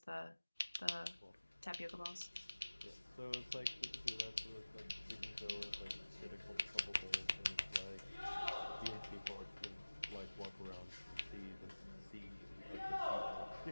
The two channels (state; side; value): inverted; both; correlation -1.00